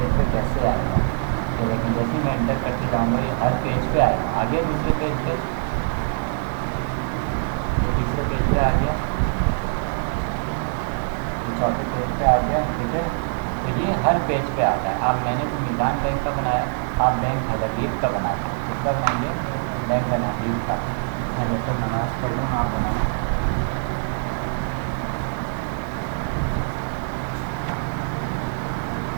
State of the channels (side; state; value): left; silent; digital silence